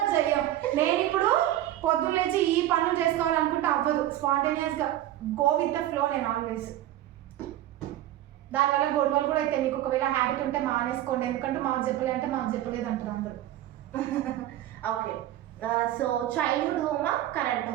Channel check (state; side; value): quieter; left; 13.5 dB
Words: చెయ్యం. నేను ఇప్పుడు పొద్దున్న లేచి ఈ పనులు చేసుకోవాలనుకుంటే అవ్వదు. స్పాంటేనియస్ గా గో విత్ ద ఫ్లో. నేను ఆల్వేస్ దానివల్ల గొడవలు కూడా అయితే. మీకు ఒకవేళ హ్యాబిట్ ఉంటే మానేసుకోండి, ఎందుకంటే మాకు చెప్పలే అంటే మాకు చెప్పలేదు అంటారు అందరూ. ఓకే, సో చైల్డ్హుడ్ హోమా కరెంట్